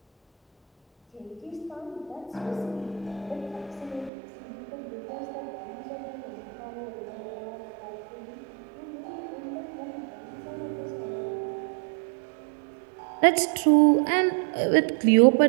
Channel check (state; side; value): drops out; left; at 4.1 s